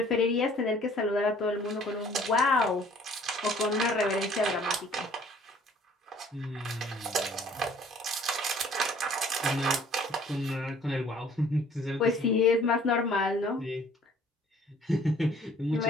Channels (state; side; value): normal; both; correlation 0.56